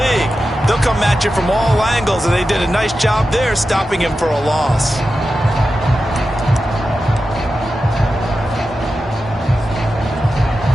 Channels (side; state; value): both; normal; correlation 0.91